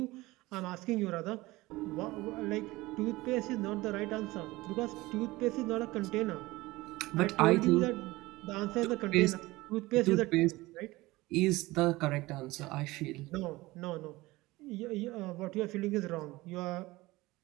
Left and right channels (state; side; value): quieter; left; 20.1 dB